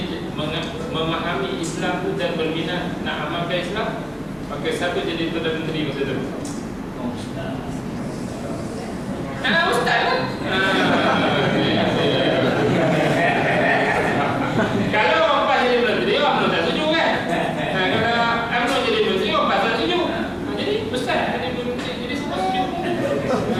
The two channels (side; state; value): both; identical; correlation 1.00